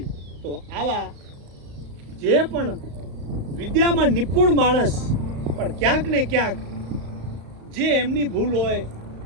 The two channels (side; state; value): left; late; 35 ms